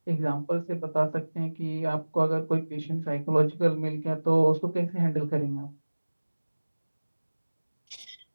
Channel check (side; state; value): both; inverted; correlation -1.00